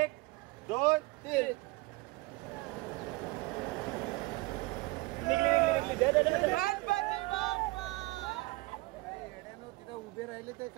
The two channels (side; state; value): left; quieter; 22.8 dB